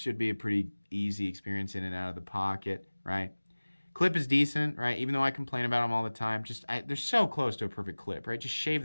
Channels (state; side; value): inverted; both; correlation -1.00